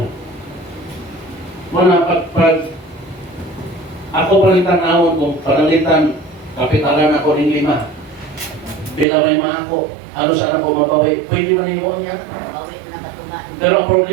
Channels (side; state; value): left; drops out; at 9.1 s